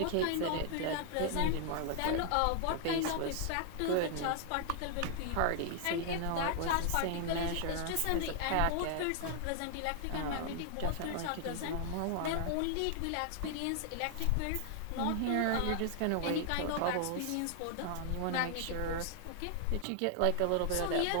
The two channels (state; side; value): different; both; correlation 0.00